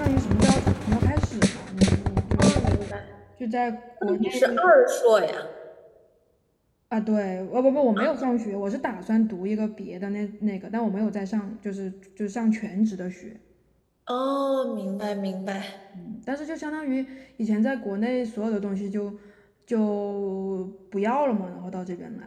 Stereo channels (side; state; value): both; identical; correlation 1.00